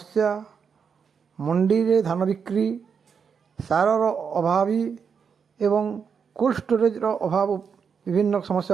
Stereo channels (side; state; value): left; quieter; 6.4 dB